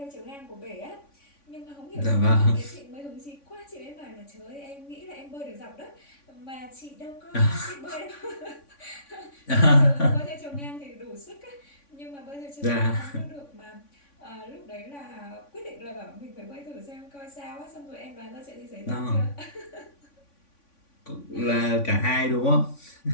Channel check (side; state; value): right; late; 3.5 ms